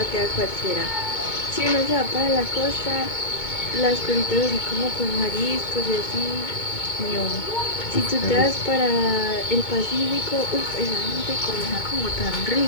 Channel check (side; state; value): right; late; 2.2 ms